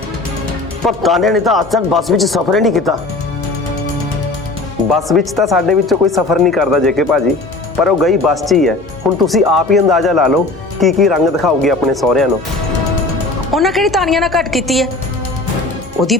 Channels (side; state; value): right; quieter; 3.0 dB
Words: ਪਰ ਤਾਨੇ ਨੇ ਤਾਂ ਅੱਜ ਤੱਕ ਬੱਸ ਵਿੱਚ ਸਫ਼ਰ ਹੀ ਨਹੀਂ ਕੀਤਾ। ਬੱਸ ਵਿੱਚ ਤਾਂ ਸਾਡੇ ਵਿੱਚੋਂ ਕੋਈ ਸਫ਼ਰ ਨਹੀਂ ਕਰਦਾ ਜੇਕੇ ਭਾਜੀ, ਪਰ ਉਹ ਗਈ ਬੱਸ 'ਚ ਹੀ ਹੈ। ਹੁਣ ਤੁਸੀਂ ਆਪ ਹੀ ਅੰਦਾਜ਼ਾ ਲਾ ਲਓ ਕੀ ਰੰਗ ਦਿਖਾਊਗੀ ਆਪਣੇ ਸਹੁਰਿਆਂ ਨੂੰ। ਉਹਨਾਂ ਕਿਹੜੀ ਤਾਨੀਆਂ ਨਾਲ ਘੱਟ ਕੀਤੀ ਹੈ? ਉਹਦੀ